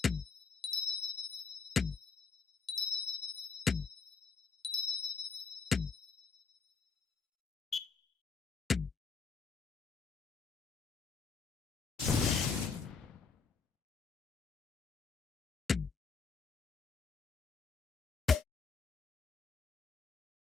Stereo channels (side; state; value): right; quieter; 5.2 dB